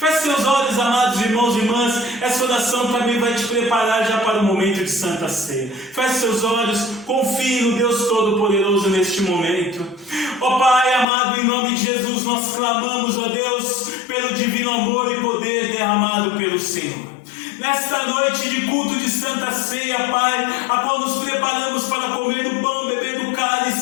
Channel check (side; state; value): right; drops out; at 11.1 s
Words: seus olhos, amados irmãos e irmãs, essa oração também vai te preparar já para o momento de Santa Ceia. Feche seus olhos, confie no Deus Todo-Poderoso neste momento. Ó Pai amado, em nome de Jesus, nós clamamos, ó Deus, pelo divino amor e poder derramado pelo Senhor. Nesta noite de culto de Santa Ceia, Pai, a qual nos preparamos para comer do pão, beber do